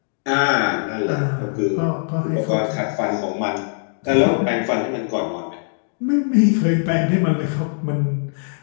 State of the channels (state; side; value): silent; right; digital silence